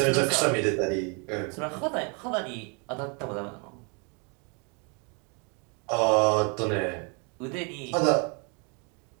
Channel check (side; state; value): left; quieter; 34.5 dB